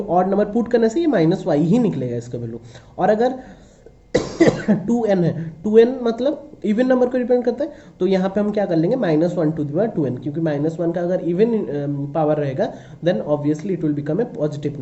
ऑड नंबर पुट करने से ये -y ही निकलेगा इसका वैल्यू। और अगर 2n है, 2n मतलब इवन नंबर को रिप्रेजेंट करता है, तो यहाँ पे हम क्या कर लेंगे, -1 टू द पावर 2n, क्योंकि -1 का अगर इवन पावर रहेगा then obviously it will become a positive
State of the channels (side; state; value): both; identical; correlation 1.00